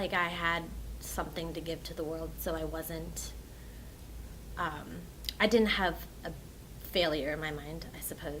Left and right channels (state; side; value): identical; both; correlation 1.00